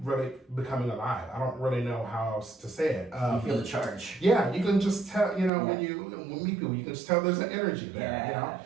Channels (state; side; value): drops out; left; at 5.5 s